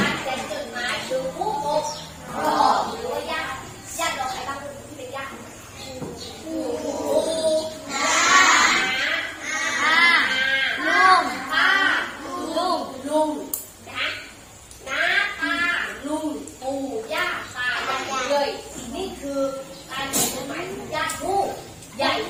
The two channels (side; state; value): both; identical; correlation 1.00